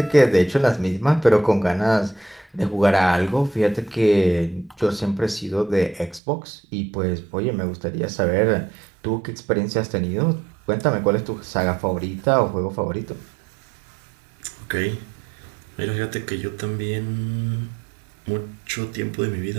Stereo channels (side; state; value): left; drops out; at 6.2 s